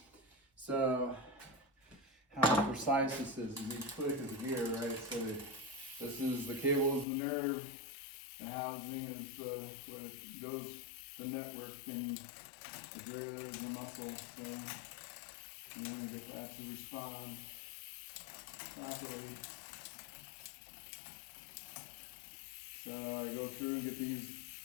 So how precise this is each click is a gear, right? So this is the cable is the nerve, the housing is where it goes, the network, and the derailleur is the muscle. So you want to get that to respond properly. So I go through and get these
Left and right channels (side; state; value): right; drops out; at 7.1 s